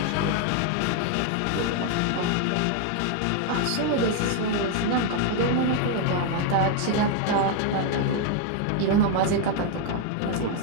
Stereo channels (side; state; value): both; different; correlation 0.01